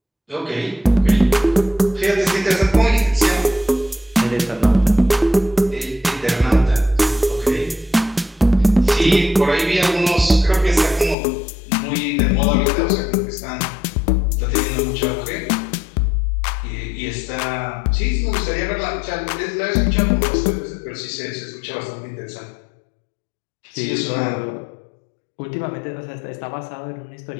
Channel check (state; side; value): drops out; right; at 11.2 s